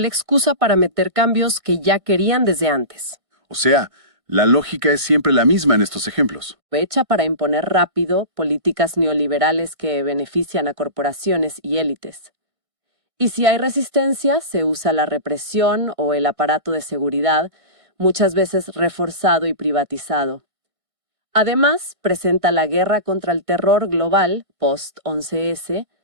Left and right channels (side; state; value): left; late; 1.6 ms